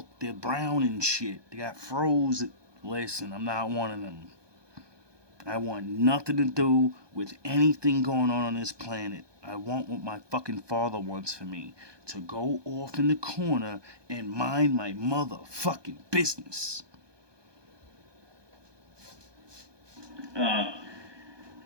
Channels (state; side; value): late; left; 1.2 ms